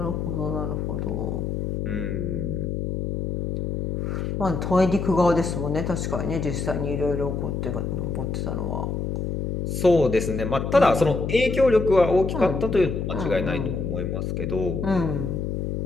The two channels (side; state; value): left; noise; hum, 2 dB below the sound